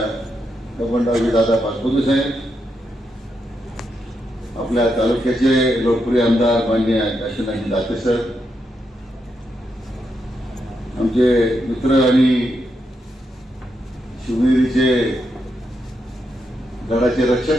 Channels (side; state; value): both; normal; correlation 0.83